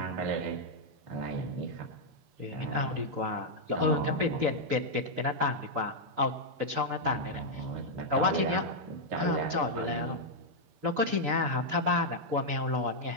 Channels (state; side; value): late; left; 6.9 ms